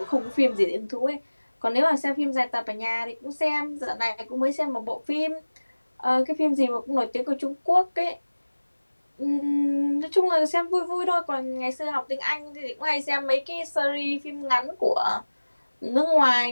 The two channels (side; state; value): both; inverted; correlation -1.00